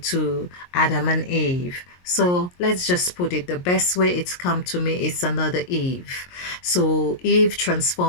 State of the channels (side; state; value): right; late; 22 ms